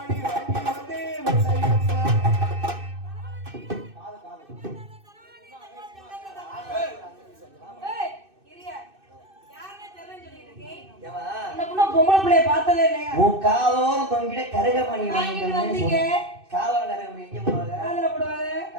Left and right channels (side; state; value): left; late; 2.6 ms